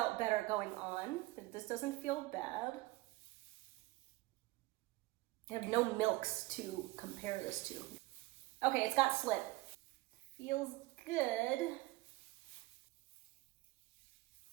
better going on. This doesn't feel bad. I have no milks to compare this to. Okay, it's got slip. Feels good.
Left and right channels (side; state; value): left; quieter; 20.1 dB